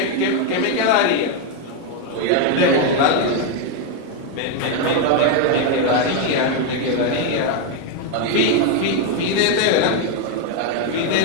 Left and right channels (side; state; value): both; different; correlation 0.01